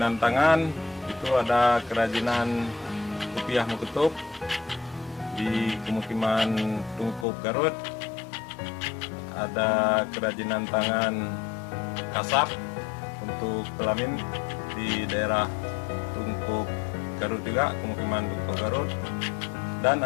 tangan, itu ada kerajinan kopiah Muketup di pemukiman Tungkup Garut, ada kerajinan tangan kasap untuk pelamin di daerah Tungkup Garut juga, pemukiman Tungkup Garut, dan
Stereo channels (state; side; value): drops out; right; at 7.2 s